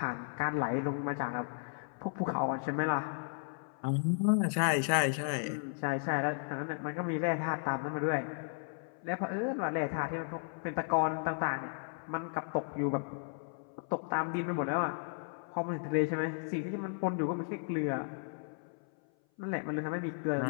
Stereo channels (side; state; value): right; silent; 55 dB below the other